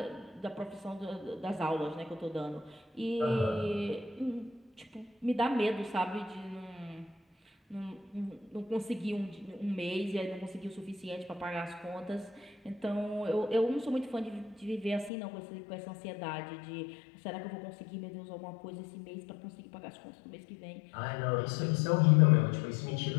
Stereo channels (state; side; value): drops out; right; at 15.1 s